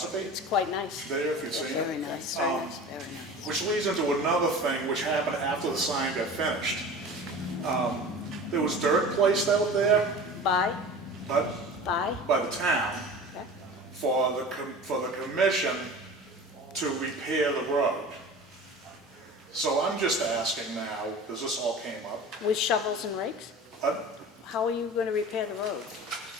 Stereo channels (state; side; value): normal; both; correlation 0.37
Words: It's quite nice. there, if you've seen Very it. nice, very nice, very nice. Which leads into another thing which happened after the sign got finished. There was dirt placed out there Bye, by bye. the town Okay. for the commission to repair the road. So I'm just asking now, because this all came up, With shovels and rakes? How are you going to repair the road?